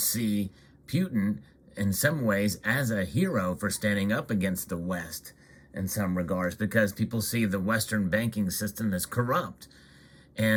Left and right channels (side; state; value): both; identical; correlation 1.00